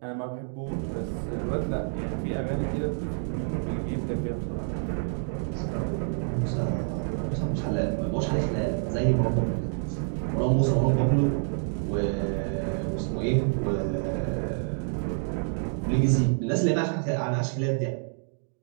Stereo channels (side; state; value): left; silent; digital silence